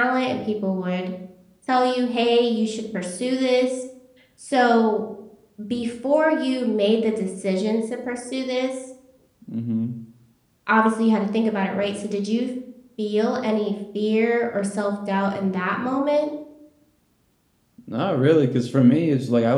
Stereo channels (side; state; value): both; identical; correlation 1.00